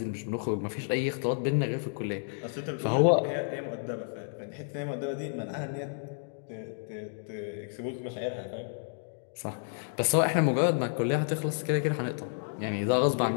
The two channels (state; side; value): silent; right; digital silence